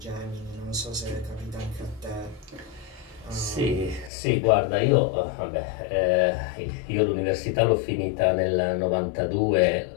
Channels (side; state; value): right; drops out; at 4.1 s